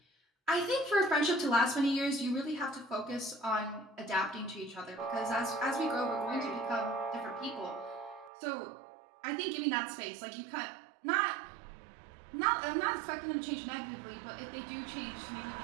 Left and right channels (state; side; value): drops out; left; at 8.3 s